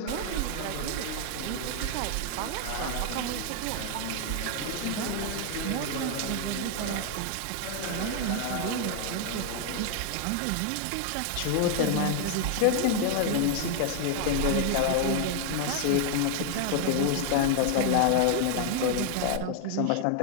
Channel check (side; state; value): both; different; correlation 0.00